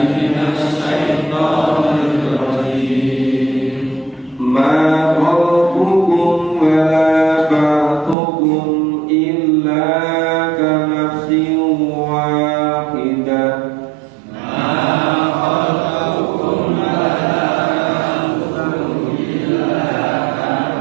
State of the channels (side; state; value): left; drops out; at 8.2 s